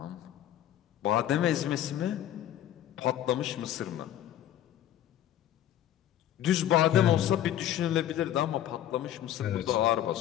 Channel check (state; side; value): quieter; right; 11.8 dB